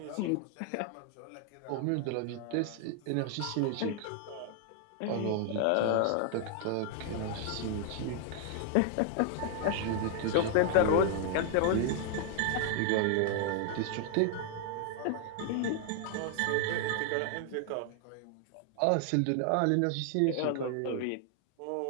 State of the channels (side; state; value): both; different; correlation 0.00